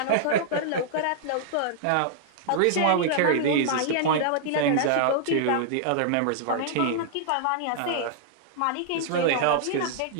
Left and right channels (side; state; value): both; different; correlation -0.01